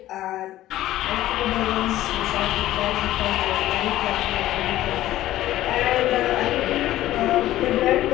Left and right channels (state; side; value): quieter; right; 14.5 dB